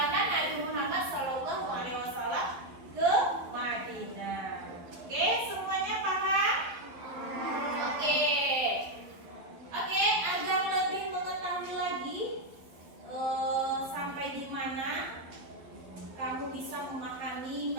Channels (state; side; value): late; left; 11 ms